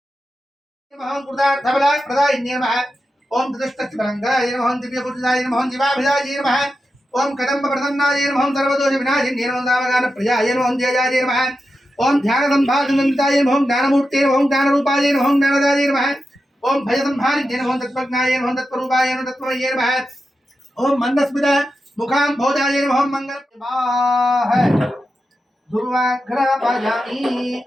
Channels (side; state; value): both; normal; correlation 0.90